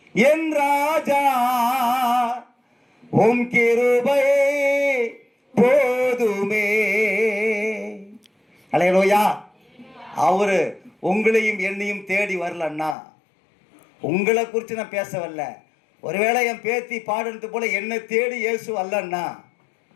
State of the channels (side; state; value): right; drops out; at 13.0 s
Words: என் ராஜா, உம் கிருபையே போதுமே. அல்லேலூயா. அவரு உங்களையும் என்னையும் தேடி வரலன்னா, உங்களை குறித்து நான் பேச வரல. ஒருவேளை என் பேத்தி பாடுறது போல என்னை தேடி இயேசு அல்லன்னா